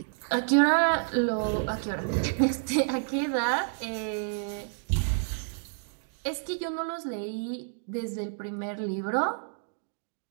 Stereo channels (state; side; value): silent; left; digital silence